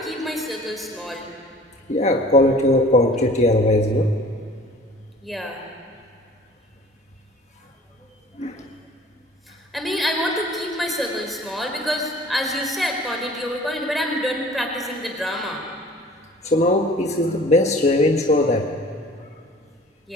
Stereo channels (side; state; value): both; normal; correlation 0.48